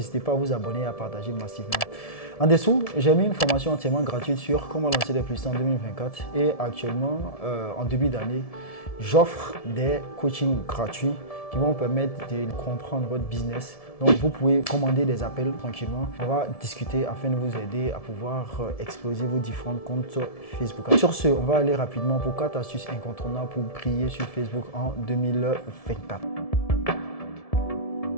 pas à vous abonner et à partager massivement. En dessous, j'ai mis une formation entièrement gratuite sur comment lancer des publicités en 2024. Et actuellement, en début d'année, j'offre des coachings gratuits qui vont vous permettre de comprendre votre business. Donc, vous pouvez commander des appels tranquillement. On va discuter afin de vous aider à pouvoir exploser vos différents comptes Facebook. Sur ce, on va aller rapidement pour 4 astuces incontournables pour briller sur Facebook en 2024.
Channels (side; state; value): right; late; 1.7 ms